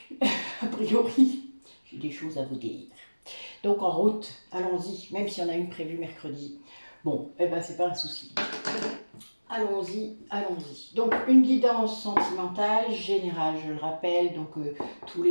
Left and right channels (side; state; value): both; inverted; correlation -1.00